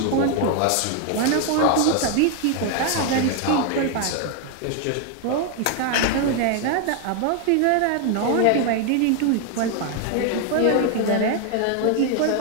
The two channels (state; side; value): different; both; correlation 0.01